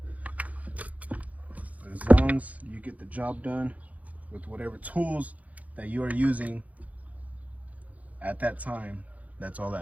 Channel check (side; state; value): left; late; 0.071 ms